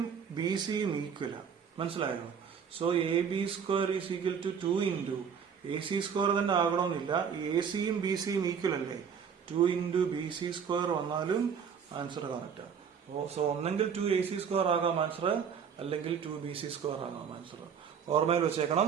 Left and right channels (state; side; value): quieter; left; 7.1 dB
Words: ബി സിയും ഈക്വലാണ്. മനസ്സിലായോ? So A B square is equal to 2 into A C square തന്നെ ആകണമെന്നില്ല. എ സിയും ബി സിയും ഈക്വൽ അല്ലേ? 2 ഇൻറ്റു ബി സി സ്ക്വയർ വന്നാലും ആൻസർ കറക്റ്റാണ്. സോ ഒന്നെങ്കിൽ 2 എ സി സ്ക്വയർ ആകാം ആൻസർ, അല്ലെങ്കിൽ 2 ബി സി സ്ക്വയർ ആകാം ആൻസർ. ഓർമ്മയിൽ വെച്ചേക്കണം.